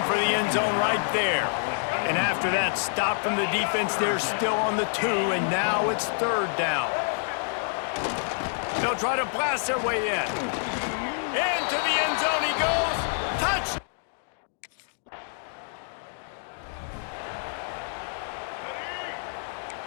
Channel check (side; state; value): right; silent; digital silence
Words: for the end zone right there. And after that stop from the defense, they're still on the 2, and now it's 3rd down. They'll try to blast their way in. Into the end zone he goes. Touch!